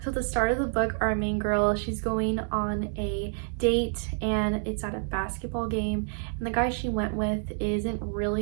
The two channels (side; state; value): left; silent; 59 dB below the other